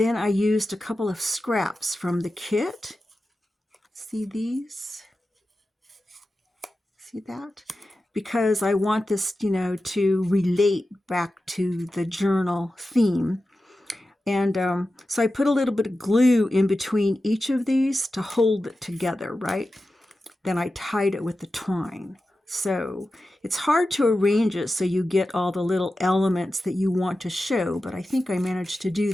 I used a couple of scraps from the kit. See these? See that? Because I want this, to relate back to the journal theme. And so I put a little bit of glue in between each of these to hold it together, right? Then I tied it with the twine. So it's hard to arrange it so you get all the little elements that you want to show, but I think I managed to do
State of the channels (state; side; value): normal; both; correlation 0.93